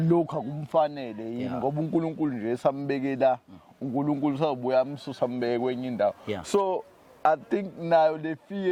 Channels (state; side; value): identical; both; correlation 1.00